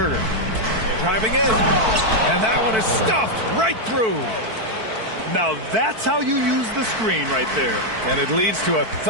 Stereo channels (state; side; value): late; left; 4.5 ms